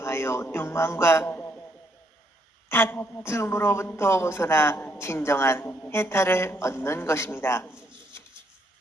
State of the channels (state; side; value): normal; both; correlation 0.73